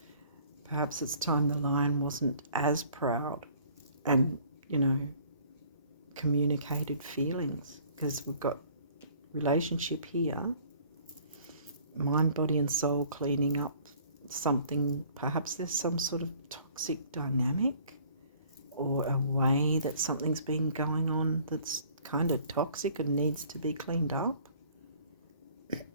Perhaps it's time the lion wasn't as proud and, you know, communicated feelings, because we've got relationship here, mind, body and soul, cleaning up something. Perhaps there's some sort of toxic dynamic or a way that something's been going on that's kind of toxic and needs to be cleaned up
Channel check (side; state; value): both; inverted; correlation -0.55